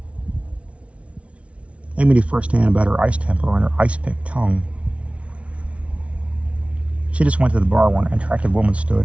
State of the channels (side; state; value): left; late; 0.062 ms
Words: Amy knew firsthand about her ice temper and her ice-pick tongue. She just went to the bar where an attractive woman